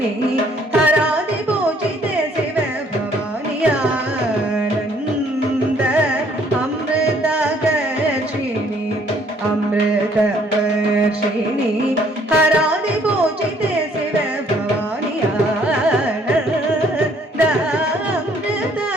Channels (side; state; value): both; normal; correlation 0.62